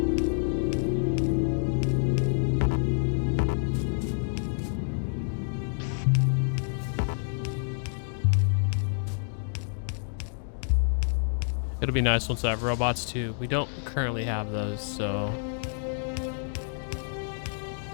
It'll be nice once I have robots too. We don't currently have those, so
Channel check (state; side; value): silent; right; digital silence